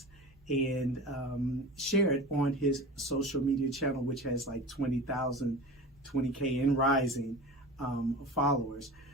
and share it on his social media channel, which has like 20,000, 20K and rising followers.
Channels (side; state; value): both; normal; correlation 0.34